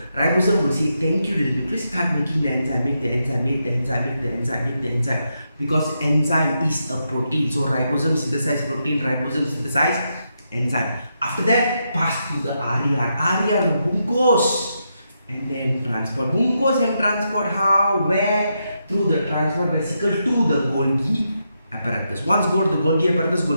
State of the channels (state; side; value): inverted; both; correlation -0.83